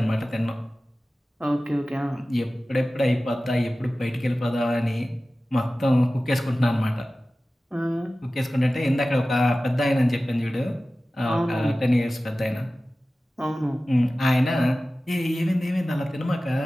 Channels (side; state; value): both; normal; correlation 0.96